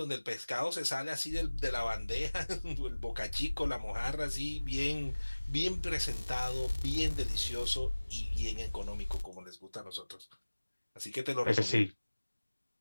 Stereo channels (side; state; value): both; inverted; correlation -1.00